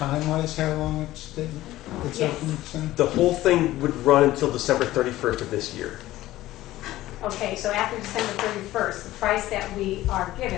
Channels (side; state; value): right; quieter; 15.8 dB